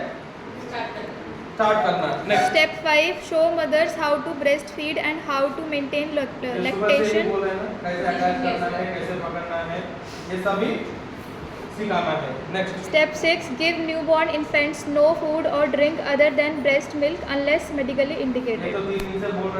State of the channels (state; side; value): identical; both; correlation 1.00